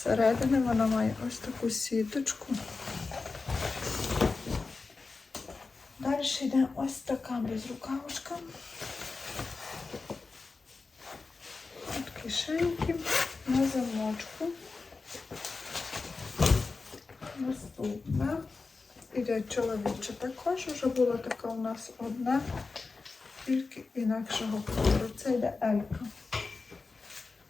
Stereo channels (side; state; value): right; quieter; 4.1 dB